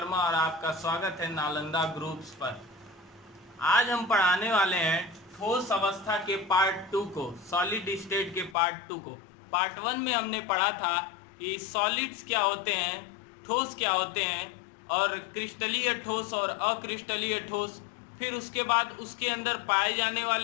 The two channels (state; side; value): drops out; right; at 8.6 s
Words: और आपका स्वागत है नालंदा ग्रुप्स पर। आज हम पढ़ाने वाले हैं ठोस अवस्था के पार्ट 2 को, सॉलिड स्टेट के पार्ट 2 को। पार्ट 1 में हमने पढ़ा था कि सॉलिड्स क्या होते हैं, ठोस क्या होते हैं, और क्रिस्टलीय ठोस और अक्रिस्टलीय ठोस। फिर उसके बाद उसके अंदर पाए जाने